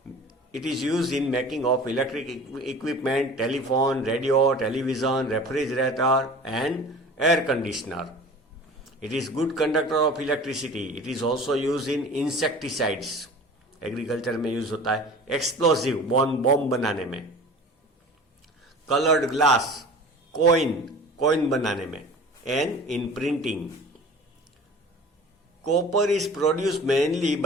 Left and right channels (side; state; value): both; normal; correlation 0.41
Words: it is used in making of electric equipment, telephone, radio, television, refrigerator and air conditioner. It is good conductor of electricity. It is also used in insecticides. Agriculture में use होता है. Explosive, bomb बनाने में. Coloured glass, coin बनाने में. And in printing. Copper is produced mainly